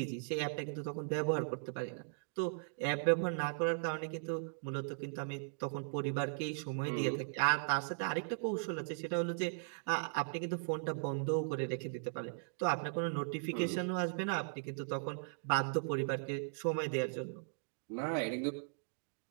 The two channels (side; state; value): left; silent; digital silence